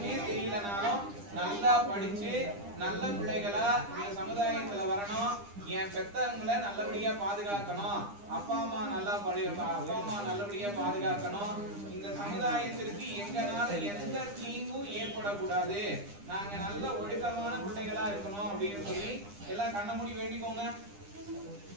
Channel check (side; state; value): left; late; 9.9 ms